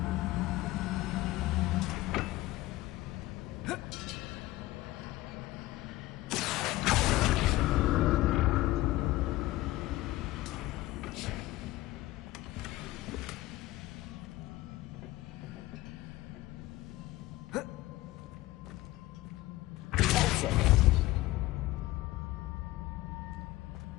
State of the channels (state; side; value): quieter; right; 17.7 dB